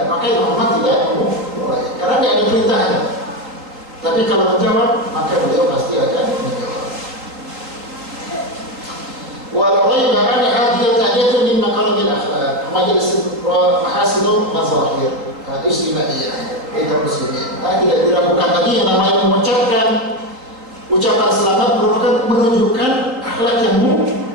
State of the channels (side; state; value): left; late; 3.7 ms